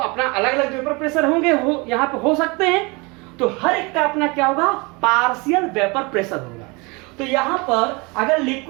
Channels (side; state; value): left; quieter; 27.5 dB